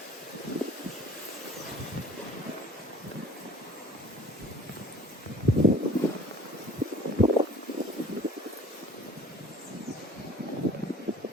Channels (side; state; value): both; normal; correlation 0.50